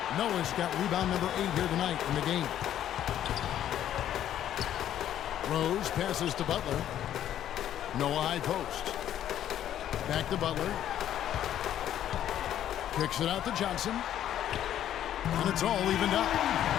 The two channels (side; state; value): right; quieter; 11.2 dB